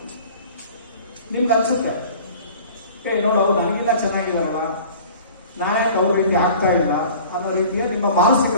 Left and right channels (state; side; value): inverted; both; correlation -0.44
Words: ನಿಮ್ಗೆ ಅನ್ಸುತ್ತೆ ನೋಡು ಅವ್ರು ನನಗಿಲ್ಲ ಚೆನ್ನಾಗಿದಾರಲ್ಲ, ನಾನೇ ಅವ್ರ ರೀತಿ ಆಗ್ತಾ ಇಲ್ಲ ಅನ್ನೋ ರೀತಿಯ ನಿಮ್ಮ ಮಾನಸಿಕ